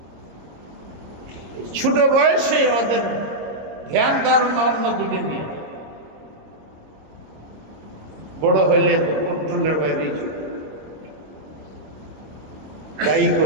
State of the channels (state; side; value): late; left; 26 ms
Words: ছোট বয়সে ওদের ধ্যান ধারণা অন্যদিকে নিয়ে, বড় হইলে তো কন্ট্রোলের বাইরেই চলে। দায়ী